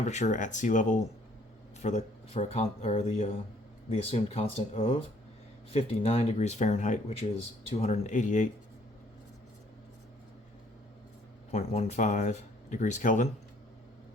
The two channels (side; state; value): both; normal; correlation 0.62